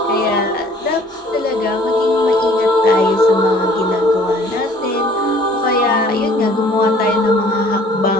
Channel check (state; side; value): normal; both; correlation 0.55